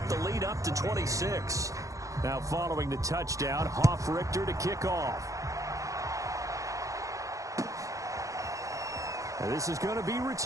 the lead up to 26. Now following the touchdown, Hoff-Richter to kick off. And this is going to be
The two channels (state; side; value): late; left; 0.16 ms